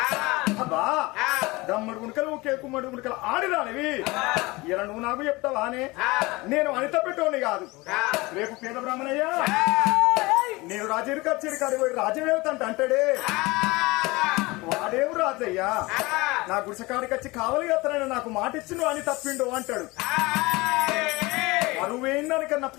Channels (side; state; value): right; quieter; 22.7 dB